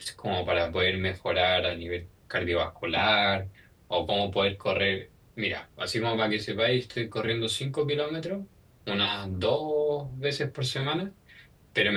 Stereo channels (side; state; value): both; identical; correlation 1.00